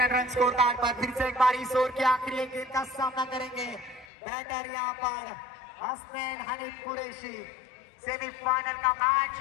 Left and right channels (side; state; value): right; drops out; at 4.0 s